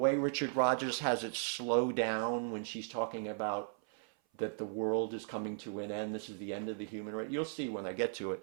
Rodgers has it slow down when she's talking about that the world is coming to an end. This is the end of the human race. You'll see when I get to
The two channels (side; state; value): left; silent; 53 dB below the other